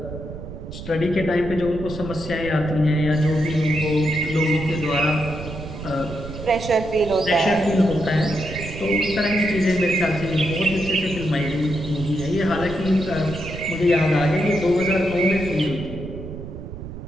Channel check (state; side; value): noise; right; rumble, 10 dB below the sound